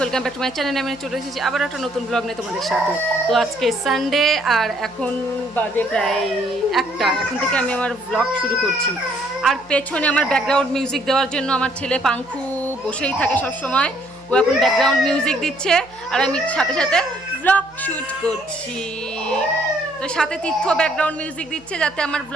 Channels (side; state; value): right; noise; hum, 27 dB below the sound